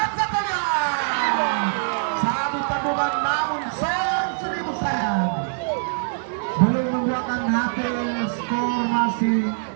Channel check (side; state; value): left; silent; 63 dB below the other